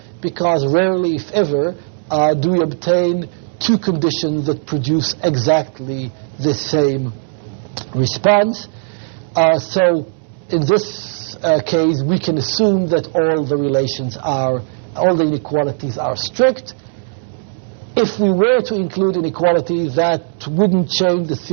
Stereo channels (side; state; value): left; silent; digital silence